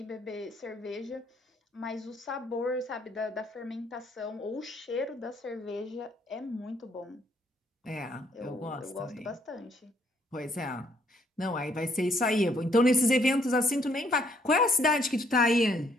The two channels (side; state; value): both; normal; correlation 0.68